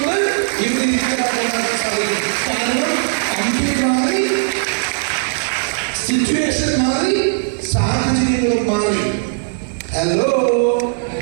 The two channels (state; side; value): silent; left; 58 dB below the other